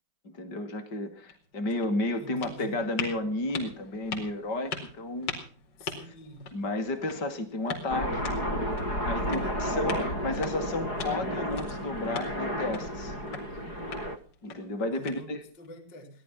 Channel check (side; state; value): right; late; 5.3 ms